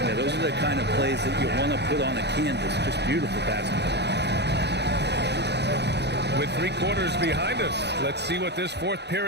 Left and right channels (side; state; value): left; late; 0.49 ms